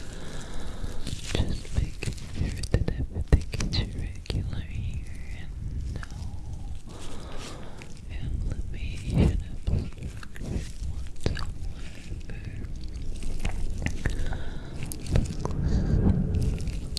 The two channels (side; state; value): both; identical; correlation 1.00